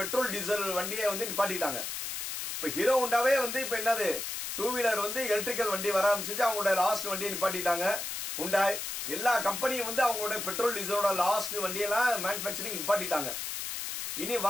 டீசல் வண்டியை வந்து நிப்பாட்டிட்டாங்க. இப்ப ஹீரோ ஹோண்டாவே வந்து இப்ப என்னது 2 வீலர் வந்து எலக்ட்ரிக்கல் வண்டி வர ஆரம்பிச்சு, அவங்களோட லாஸ்ட் வண்டியை நிப்பாட்டிட்டாங்க. ஹுண்டாய் எல்லா கம்பெனியும் வந்து அவங்களோட பெட்ரோல் டீசலோட லாஸ்ட் வண்டியெல்லாம் மேனுபேக்சரிங் நிப்பாட்டிட்டாங்க. இனி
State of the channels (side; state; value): left; noise; hiss, 4 dB below the sound